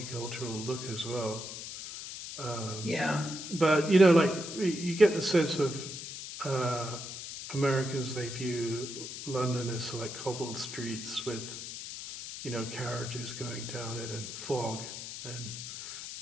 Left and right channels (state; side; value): noise; left; hiss, 9 dB below the sound